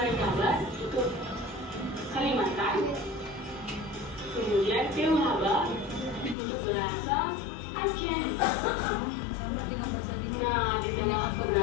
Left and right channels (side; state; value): right; drops out; at 6.4 s